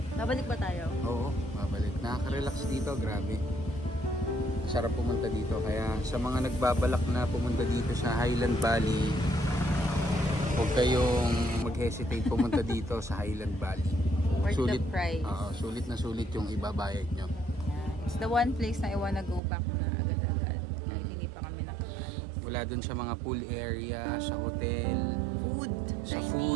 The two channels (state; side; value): drops out; left; at 19.4 s